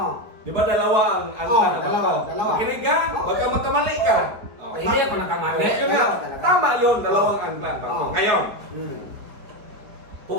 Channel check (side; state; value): left; late; 4.5 ms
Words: Di ba dalawa ang angkla na bag dalawa, ko? dalawa. Makinig ka, baka magkamali ka. Oh, Hindi ako nakamali. Ngayon nga, Dalawa talaga. tama yun, dalawang angkla ang bag ko. Oh. Ngayon, Hmm.